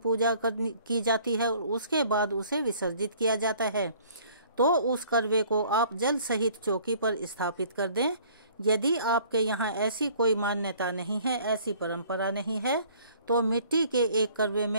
की जाती है और उसके बाद उसे विसर्जित किया जाता है। तो उस करवे को आप जल सहित चौकी पर स्थापित कर दें। यदि आपके यहाँ ऐसी कोई मान्यता नहीं है, ऐसी परंपरा नहीं है, तो मिट्टी के एक करवे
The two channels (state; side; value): inverted; both; correlation -0.55